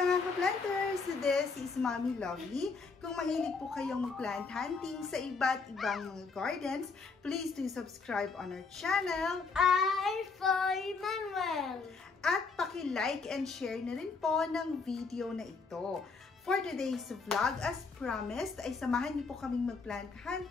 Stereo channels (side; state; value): right; quieter; 4.6 dB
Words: ka-planters! This is Mommy Lovely. Kung mahilig po kayong mag-plant hunting sa iba't ibang mga gardens, please do subscribe on our channel. Foy Manuel. At paki-like and share na rin po ng video na ito. For today's vlog, as promised, ay samahan niyo po kaming mag-plant